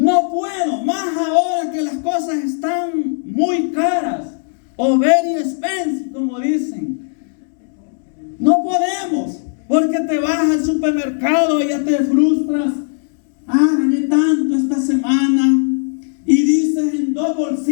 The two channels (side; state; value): right; silent; digital silence